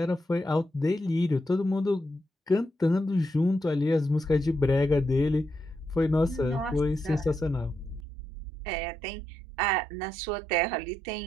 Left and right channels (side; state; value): left; drops out; at 8.1 s